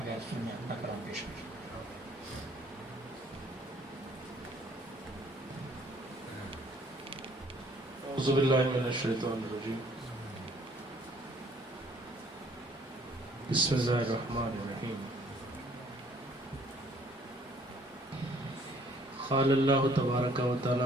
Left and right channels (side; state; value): both; normal; correlation 0.60